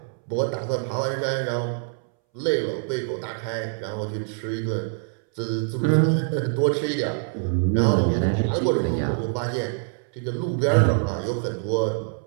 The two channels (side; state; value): left; silent; 62 dB below the other